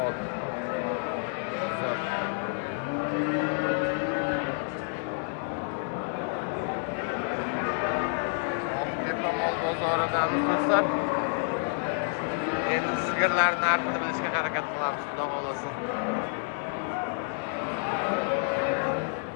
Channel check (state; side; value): silent; right; 59 dB below the other